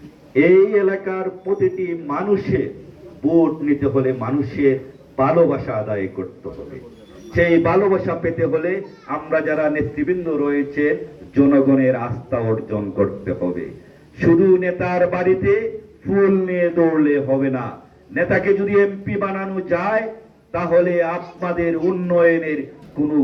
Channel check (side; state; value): both; identical; correlation 1.00